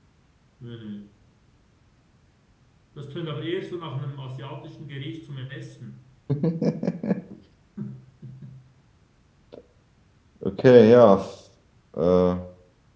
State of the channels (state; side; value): identical; both; correlation 1.00